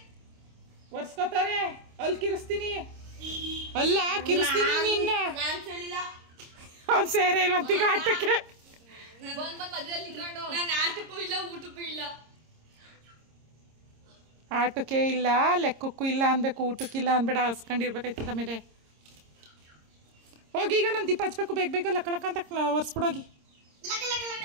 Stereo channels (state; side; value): late; left; 26 ms